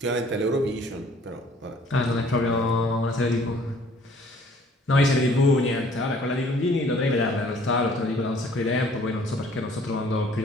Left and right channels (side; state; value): both; normal; correlation 0.57